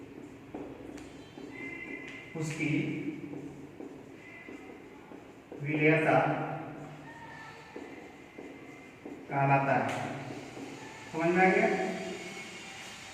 उसकी विलेयता कहलाता है। समझ में आ गया?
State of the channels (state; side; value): identical; both; correlation 1.00